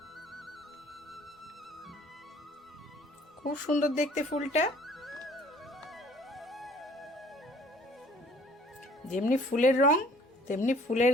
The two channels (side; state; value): both; normal; correlation 0.55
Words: খুব সুন্দর দেখতে ফুলটা, যেমনি ফুলের রং তেমনি